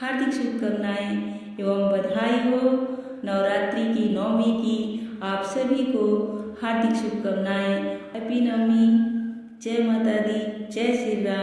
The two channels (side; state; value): both; identical; correlation 1.00